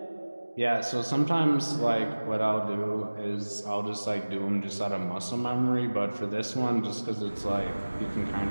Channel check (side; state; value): both; inverted; correlation -1.00